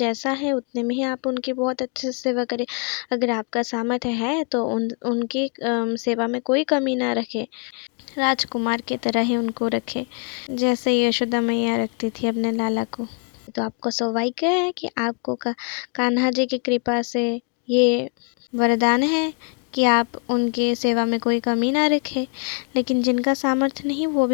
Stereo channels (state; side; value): quieter; right; 36.7 dB